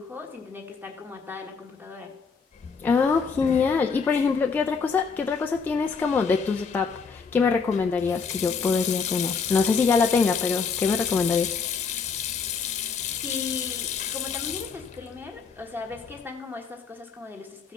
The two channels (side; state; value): right; quieter; 5.4 dB